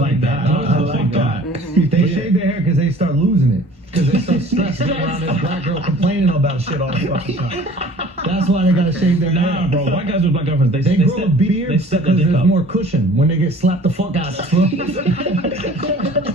that. I like that. They shave their hair because they start losing it. Because they're so stressed around this black girl complaining about shit all the fucking time. That's why they gotta shave their hair. Nah, bro. White guys with black girlfriends, they grow a beard because there's more cushion when they get slapped the fuck out of.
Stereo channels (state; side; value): normal; both; correlation 0.48